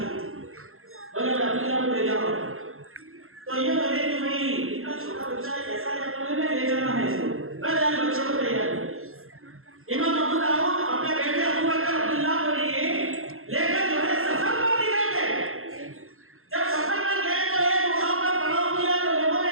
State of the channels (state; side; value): late; left; 0.61 ms